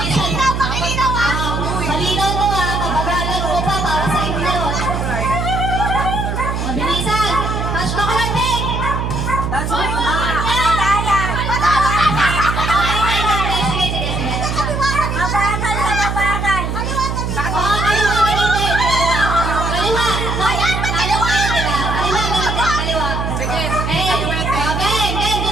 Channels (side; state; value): right; noise; hum, 2 dB below the sound